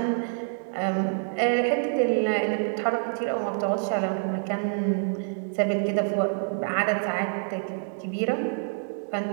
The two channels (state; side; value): silent; left; digital silence